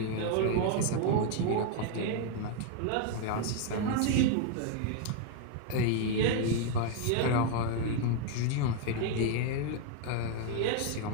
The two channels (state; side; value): different; both; correlation 0.00